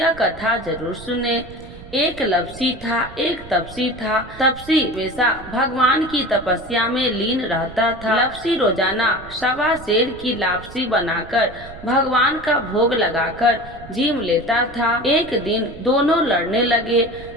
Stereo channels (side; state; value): right; noise; rumble, 17 dB below the sound